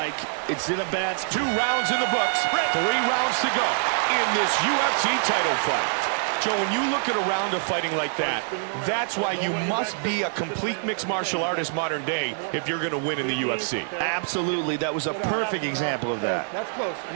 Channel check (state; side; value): silent; left; digital silence